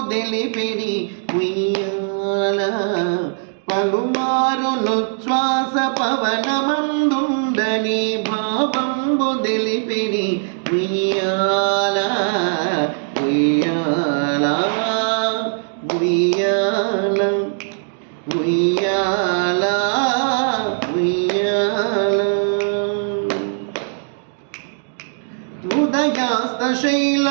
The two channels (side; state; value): left; silent; digital silence